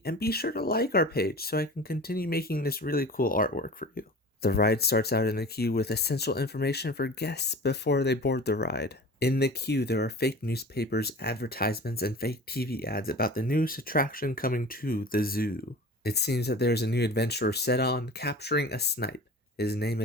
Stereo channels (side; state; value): both; normal; correlation 0.39